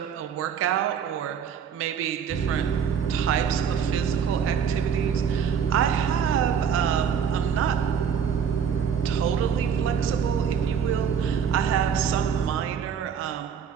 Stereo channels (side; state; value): left; quieter; 7.4 dB